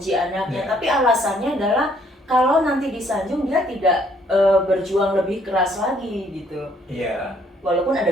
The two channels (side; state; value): both; normal; correlation 0.65